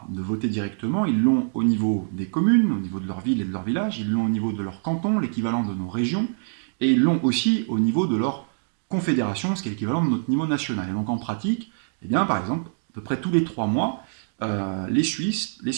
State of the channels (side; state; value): left; silent; digital silence